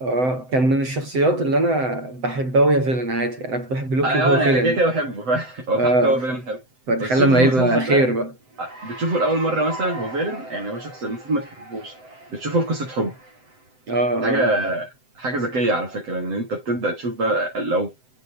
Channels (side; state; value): left; late; 7.8 ms